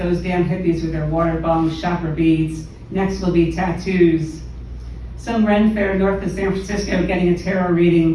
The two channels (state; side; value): identical; both; correlation 1.00